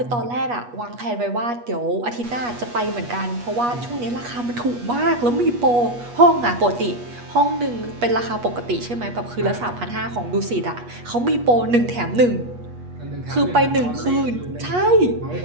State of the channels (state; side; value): late; left; 8.3 ms